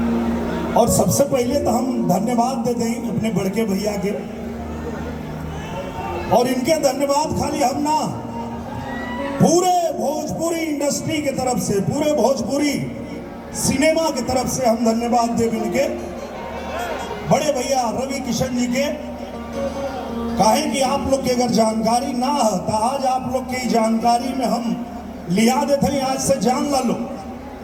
और सबसे पहले तो हम धन्यवाद देते हैं अपने बड़के भैया के। और इनके धन्यवाद खाली हम ना, पूरे भोजपुरी इंडस्ट्री की तरफ से, पूरे भोजपुरी सिनेमा की तरफ से हम धन्यवाद देव इनके बड़े भैया रवि किशन जी के। काहे कि आप लोग की अगर जानकारी ना हो तो आज आप लोग की जानकारी में हम लिया देते हैं। आज से जान ला लो,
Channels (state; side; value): identical; both; correlation 1.00